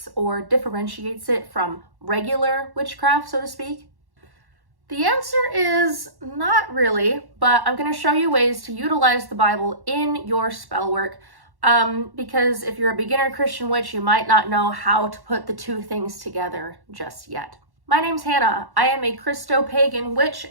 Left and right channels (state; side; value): late; left; 1.1 ms